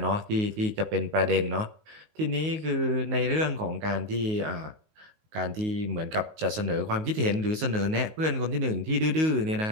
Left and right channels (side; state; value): left; late; 19 ms